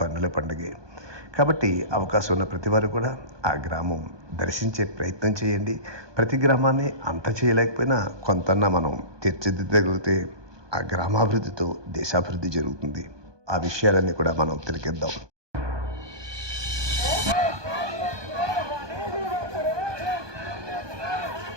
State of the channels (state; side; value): late; left; 1.2 ms